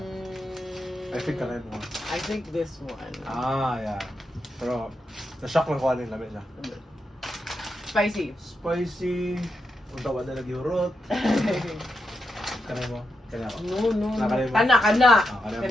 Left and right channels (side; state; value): both; normal; correlation 0.85